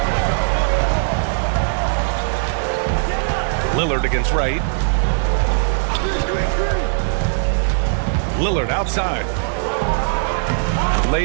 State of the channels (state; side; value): silent; left; digital silence